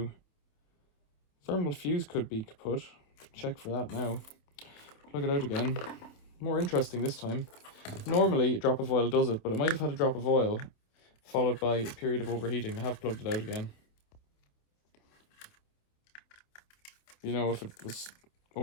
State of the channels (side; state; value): right; late; 27 ms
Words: Thermal fuse could be kaput. Check for that now. Plug it out again. More interesting this time. Normally a drop of oil does it, but it might have had a drop of oil followed by a period of overheating. I have plugged it out again. You know, if it was